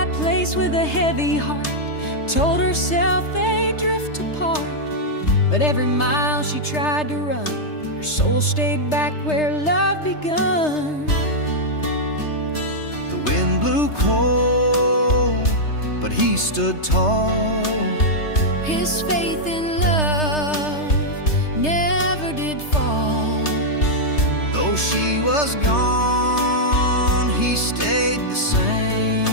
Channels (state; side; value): late; right; 3.3 ms